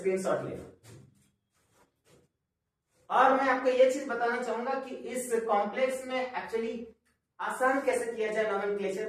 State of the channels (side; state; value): both; identical; correlation 1.00